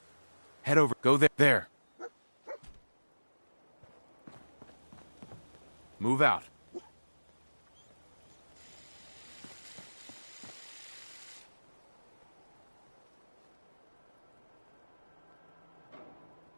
Head over. Go there. There. Move out.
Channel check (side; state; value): both; inverted; correlation -1.00